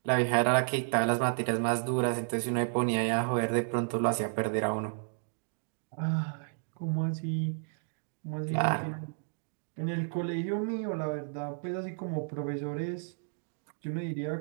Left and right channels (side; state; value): left; silent; digital silence